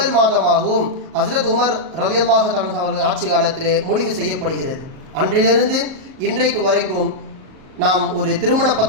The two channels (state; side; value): late; left; 38 ms